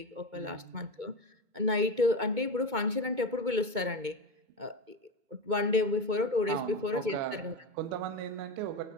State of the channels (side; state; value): left; late; 2.2 ms